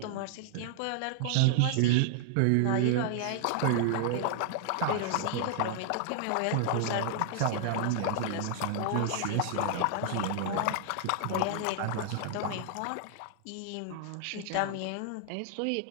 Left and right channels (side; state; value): both; different; correlation 0.00